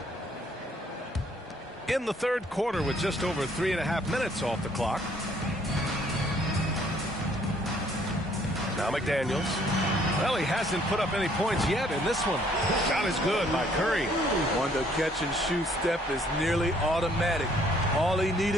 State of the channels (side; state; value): both; normal; correlation 0.63